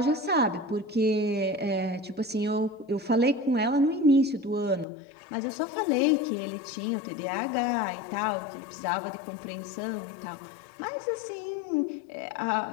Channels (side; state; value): right; drops out; at 4.9 s